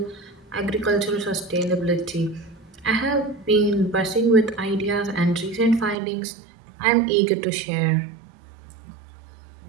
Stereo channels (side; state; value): left; drops out; at 6.0 s